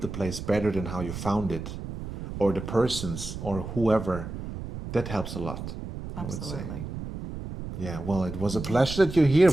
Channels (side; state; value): right; noise; rumble, 8 dB below the sound